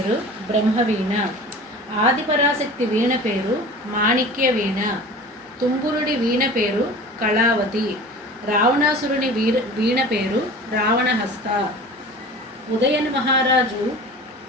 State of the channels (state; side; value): normal; both; correlation 0.39